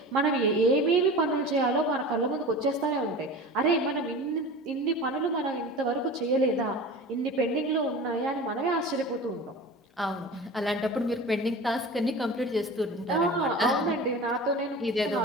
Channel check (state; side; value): normal; both; correlation 0.34